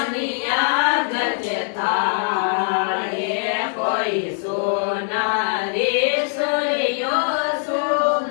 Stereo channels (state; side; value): silent; right; digital silence